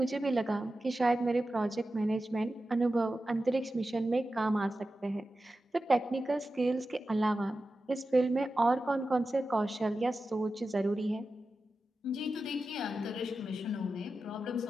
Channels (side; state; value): both; normal; correlation 0.93